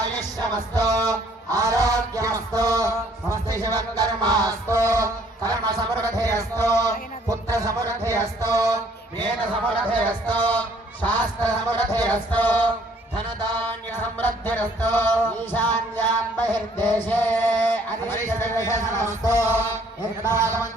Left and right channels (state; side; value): normal; both; correlation 0.61